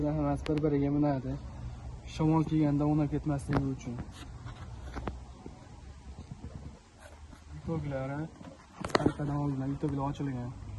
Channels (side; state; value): both; identical; correlation 1.00